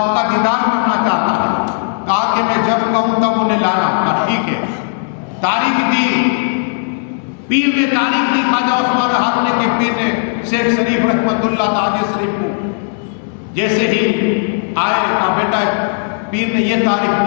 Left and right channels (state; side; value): silent; right; digital silence